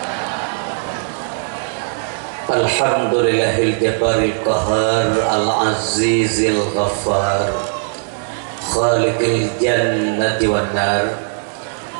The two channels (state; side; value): silent; left; digital silence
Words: Alhamdulillahil jabbaril qahar al-azizil ghaffar khaliqil jannati wan nar.